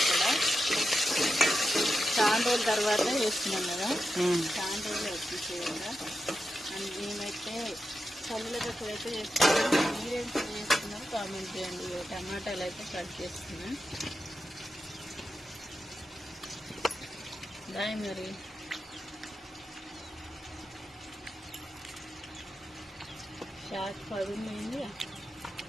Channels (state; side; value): normal; both; correlation 0.89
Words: చాలా రోజుల తర్వాత వేస్తున్నాం కదా, చాలా రోజులు వచ్చేసేయంగా. అండ్ మేమైతే పల్లీల పచ్చడి అయితే చేస్తున్నాం. మీరేం చేస్తున్నారు కామెంట్ చేయండి. టమాటాలు అయితే కట్ చేస్తున్నా. దాయి మరి షార్ట్ పడుంది,